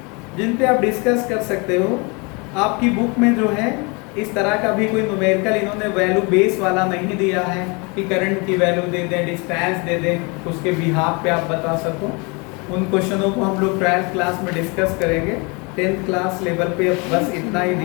जिन पे आप डिस्कस कर सकते हो। आपकी बुक में जो है इस तरह का भी कोई न्यूमेरिकल इन्होंने वैल्यू बेस वाला नहीं दिया है कि करंट की वैल्यू दे दें, डिस्टेंस दे दें, उसके बिहाफ पे आप बता सको। उन क्वेश्चनों को हम लोग 12th क्लास में डिस्कस करेंगे। 10th क्लास लेवल पे बस इतना ही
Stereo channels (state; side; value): quieter; right; 30.0 dB